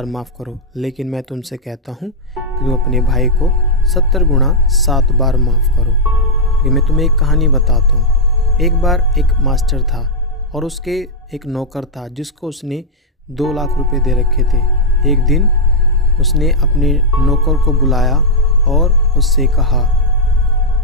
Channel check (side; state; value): both; normal; correlation -0.05